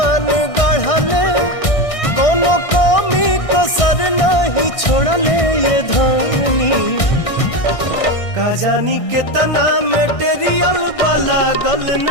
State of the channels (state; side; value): late; right; 1.6 ms